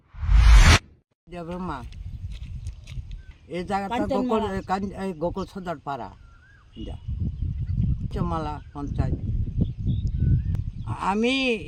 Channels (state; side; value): identical; both; correlation 1.00